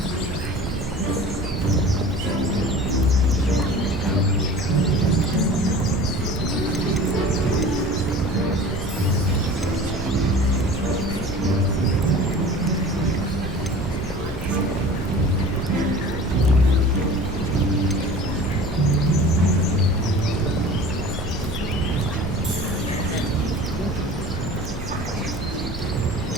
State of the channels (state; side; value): normal; both; correlation 0.41